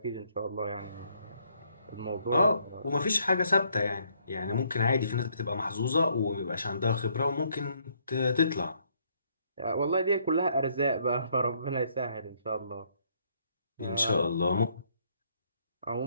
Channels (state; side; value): inverted; both; correlation -0.69